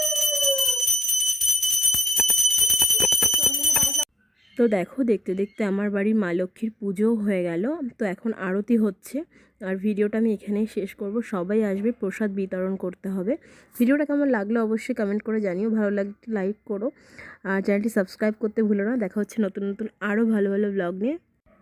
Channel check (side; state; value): both; normal; correlation 0.88